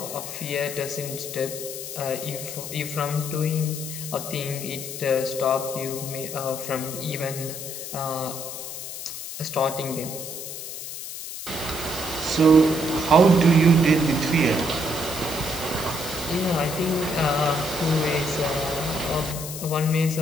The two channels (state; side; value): noise; left; hiss, 8 dB below the sound